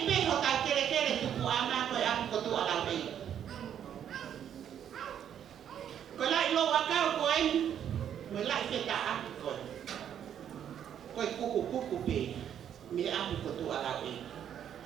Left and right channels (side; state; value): left; quieter; 9.4 dB